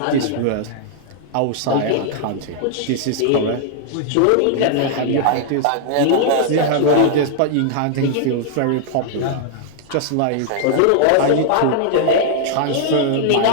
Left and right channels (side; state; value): both; different; correlation -0.01